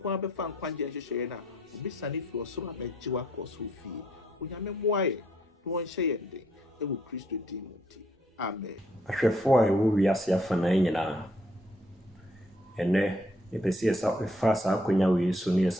a bɛfa nkwagye nhyehyɛeɛ no a obisane firi ɔsoro a bɛgye wakɔ so fie Onyame mmoa yɛ na wɔnhyɛ yɛn den ɛwɔ Kristo din mu nti amen. Ahwɛfoɔ a ɛwɔ wiase afanan nyinaa ɛnɛ yɛpɛ sɛ yɛfa saa akonnwa wei so ne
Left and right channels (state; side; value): normal; both; correlation 0.68